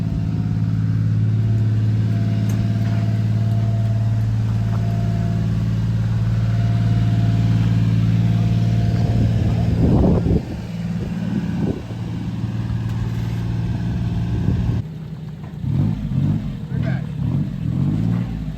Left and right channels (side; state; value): both; identical; correlation 1.00